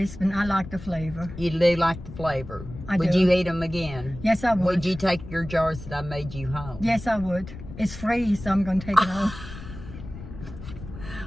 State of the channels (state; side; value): noise; left; rumble, 13 dB below the sound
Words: and I like the flavor. You do like the flavor. Would do. you eat them again? Yes, I would. Would you take your jars that I made you home? Yes, I would. It's free, so I'm going to take it home.